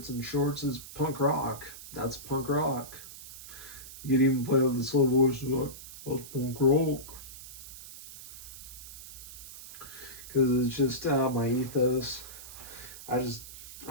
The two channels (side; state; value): right; noise; hiss, 14 dB below the sound